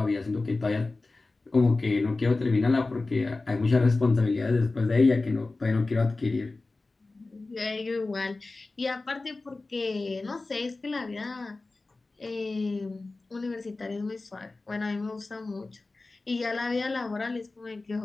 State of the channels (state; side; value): quieter; right; 3.4 dB